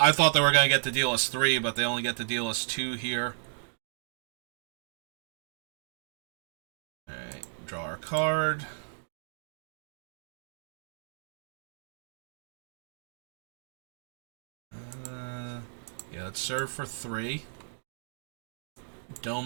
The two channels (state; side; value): silent; left; digital silence